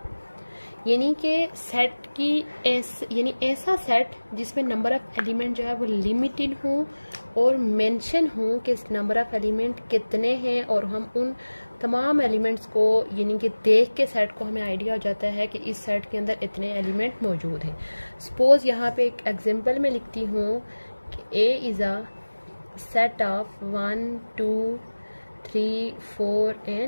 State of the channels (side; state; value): both; inverted; correlation -1.00